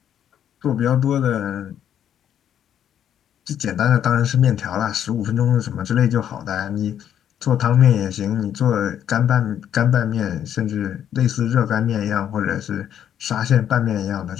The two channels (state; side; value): quieter; right; 9.8 dB